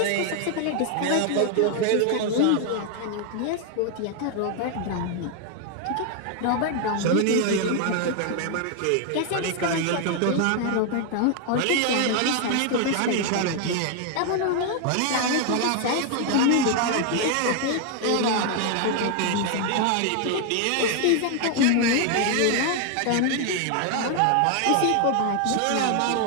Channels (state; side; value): different; both; correlation 0.00